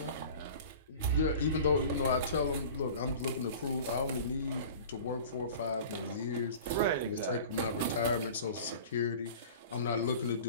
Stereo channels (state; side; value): inverted; both; correlation -0.40